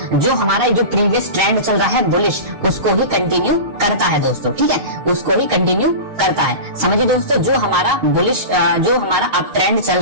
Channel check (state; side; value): late; left; 6.4 ms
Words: जो हमारा जो प्रीवियस ट्रेंड चल रहा है बुलिश, उसको ही कंटिन्यू करता है दोस्तों, ठीक है, उसको ही कंटिन्यू करता है। समझिए दोस्तों, जो हमारा बुलिश जो हमारा अप ट्रेंड चल